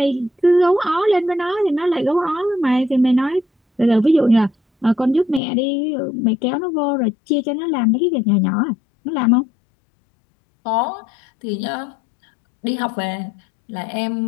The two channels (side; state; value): right; drops out; at 5.4 s